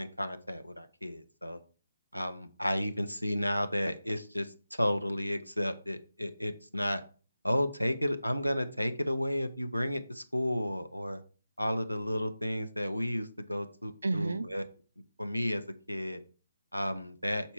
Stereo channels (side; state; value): both; inverted; correlation -0.95